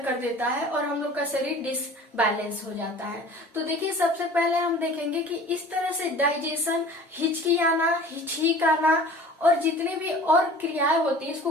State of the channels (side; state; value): both; normal; correlation 0.44